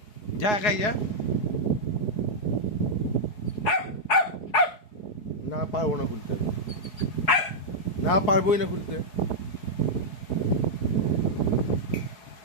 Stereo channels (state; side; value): late; right; 4.8 ms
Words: যা, একাই যা। না পারবো না খুলতে, না পারবোই না খুলতে।